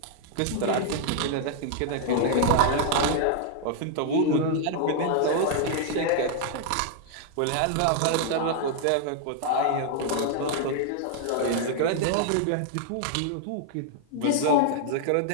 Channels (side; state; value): both; different; correlation 0.00